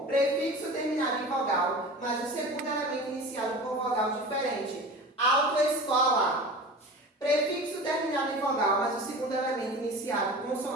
prefixo terminado em vogal, mas o segundo elemento iniciado por vogal diferente. Autoescola. Prefixo terminado em vogal, mas o segundo elemento iniciado por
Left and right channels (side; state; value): both; normal; correlation 0.35